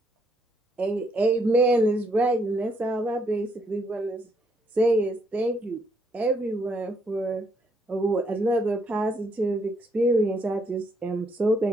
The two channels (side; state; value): both; normal; correlation 0.72